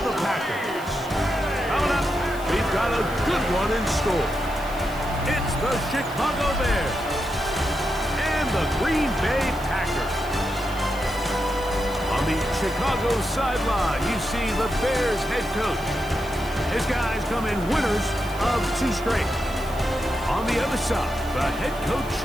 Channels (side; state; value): right; noise; hiss, 19 dB below the sound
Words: the Packers. Coming up, we've got a good one in store. It's the Chicago Bears and the Green Bay Packers. On the Chicago sideline, you see the Bears head coach. His guys come in winners of 2 straight. On the other side, the head coach